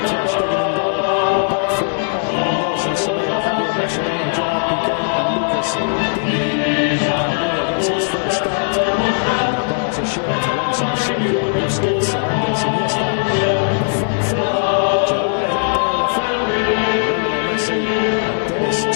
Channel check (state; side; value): silent; right; digital silence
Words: ter Stegen in goal. A back four of Nelson Semedo, Javier Mascherano, Gerard Piqué and Lucas Digne. And Paulinho gets his first start in a Barca shirt alongside Sergio Busquets and Andres Iniesta. And the front three, Gerard Deulofeu, Lionel Messi and Denis